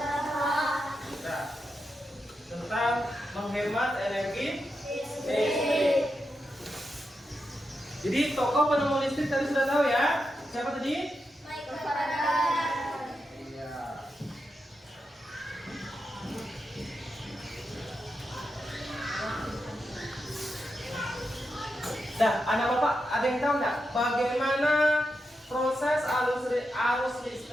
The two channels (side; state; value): both; normal; correlation 0.87